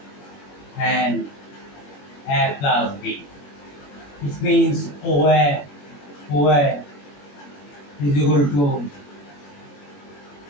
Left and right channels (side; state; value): right; late; 21 ms